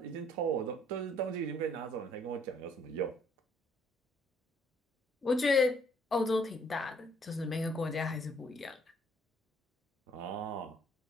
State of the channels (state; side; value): normal; both; correlation 0.64